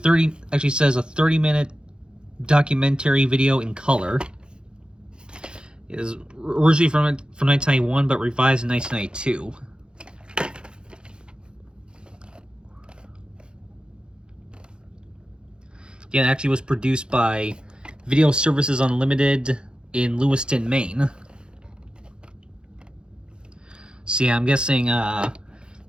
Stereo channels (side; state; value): left; late; 0.050 ms